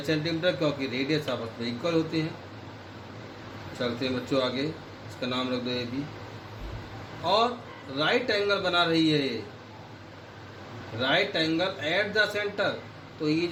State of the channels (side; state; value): both; identical; correlation 1.00